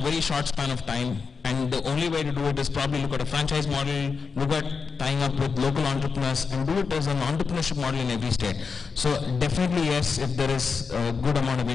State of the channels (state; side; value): quieter; right; 5.2 dB